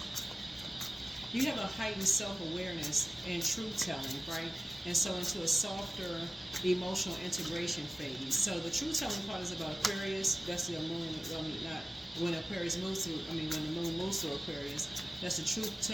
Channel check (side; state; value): both; normal; correlation 0.96